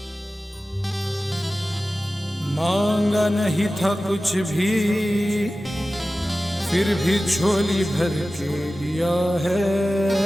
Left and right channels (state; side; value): normal; both; correlation 0.95